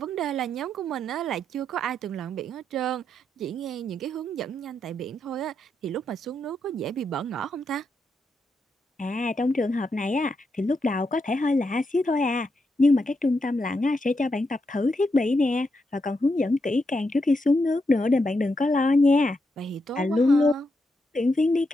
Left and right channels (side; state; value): both; normal; correlation 0.83